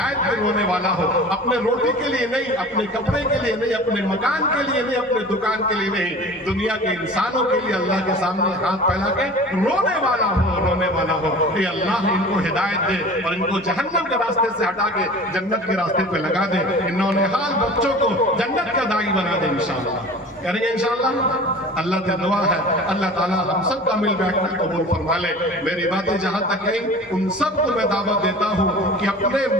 پہ رونے والا ہو، اپنے روٹی کے لیے نہیں، اپنے کپڑے کے لیے نہیں، اپنے مکان کے لیے نہیں، اپنے دکان کے لیے نہیں، دنیا کے انسانوں کے لیے اللہ کے سامنے ہاتھ پھیلا کے رونے والا ہو، رونے والا ہو۔ اے اللہ ان کو ہدایت دے اور ان کو جہنم کے راستے سے ہٹا کے جنت کے راستے پہ لگا دے، انہوں نے حال بچوں کو جنت کا داعی بنا دے انشاءاللہ، کریں گے انشاءاللہ۔ اللہ سے دعا ہے اللہ تعالیٰ ہم سب کا مل بیٹھنا قبول فرما لے۔ میری باتیں جہاں تک گئیں ان سب کو میں دعوت دیتا ہوں کہ اپنے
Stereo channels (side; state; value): both; normal; correlation 0.40